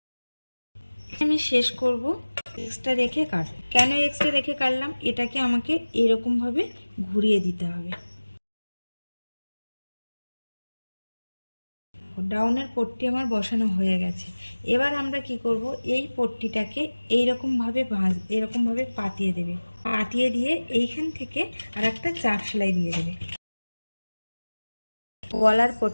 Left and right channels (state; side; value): inverted; both; correlation -1.00